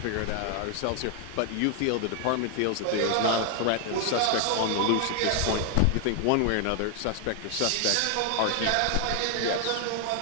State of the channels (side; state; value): both; different; correlation 0.00